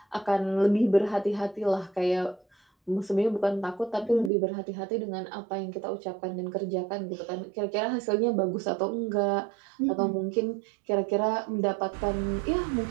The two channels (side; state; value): left; drops out; at 4.3 s